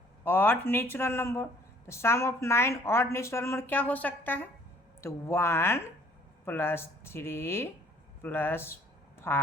ऑड नेचुरल नंबर, तो सम ऑफ 9 ऑड नेचुरल नंबर क्या हो सकता है, तो 1 + 3 +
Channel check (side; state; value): both; normal; correlation 0.58